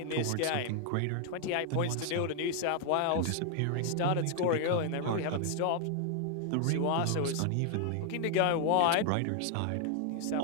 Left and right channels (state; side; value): different; both; correlation 0.00